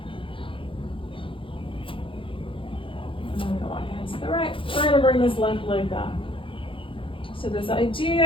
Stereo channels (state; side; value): late; right; 0.25 ms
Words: We're going to bring this left leg back. So this